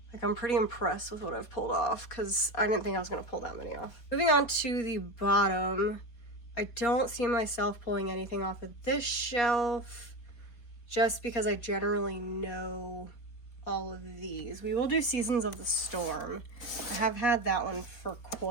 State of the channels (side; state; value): right; late; 4.2 ms